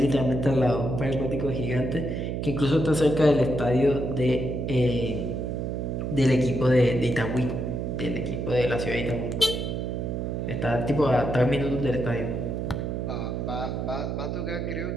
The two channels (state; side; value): noise; right; hum, 2 dB below the sound